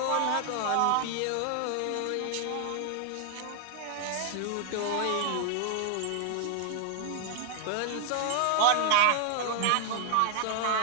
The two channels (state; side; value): different; both; correlation 0.00